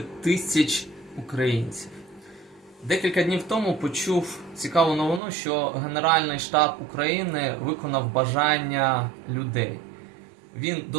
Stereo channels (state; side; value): drops out; left; at 5.2 s